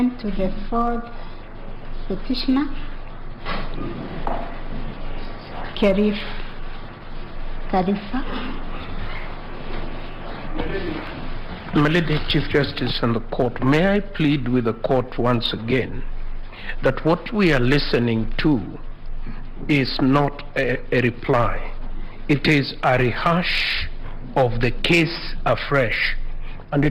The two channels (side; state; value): both; identical; correlation 1.00